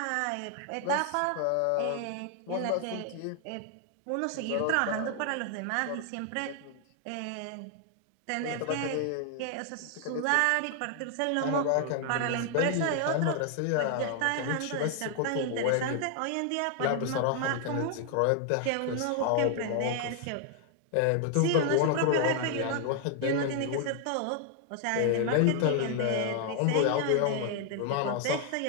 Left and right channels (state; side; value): different; both; correlation 0.00